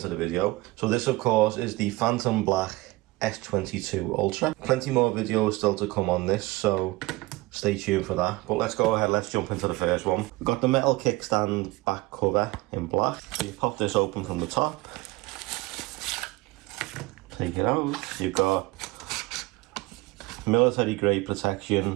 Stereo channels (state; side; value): quieter; left; 21.0 dB